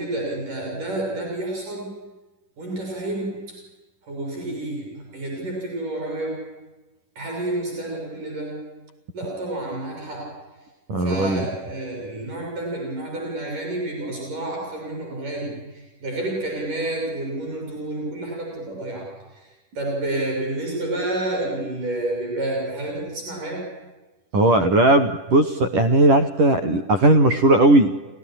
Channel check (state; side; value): late; left; 10 ms